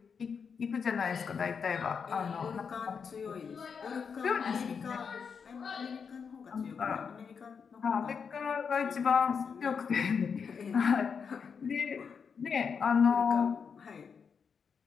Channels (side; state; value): right; quieter; 6.2 dB